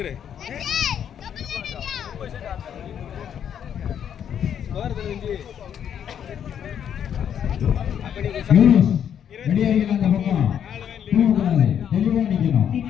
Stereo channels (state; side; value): quieter; right; 8.9 dB